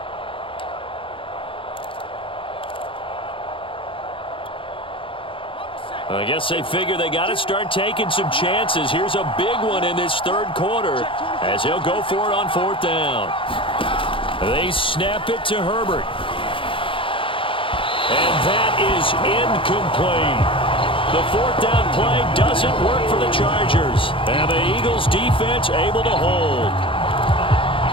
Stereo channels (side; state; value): right; late; 0.25 ms